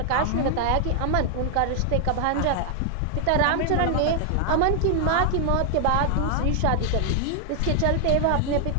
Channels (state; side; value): different; both; correlation 0.00